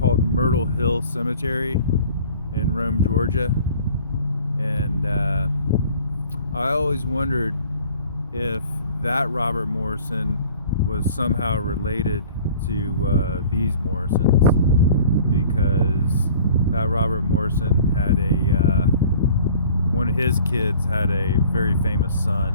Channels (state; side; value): inverted; both; correlation -0.48